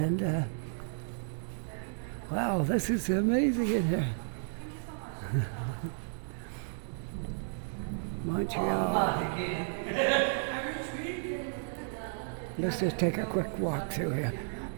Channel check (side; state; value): left; silent; digital silence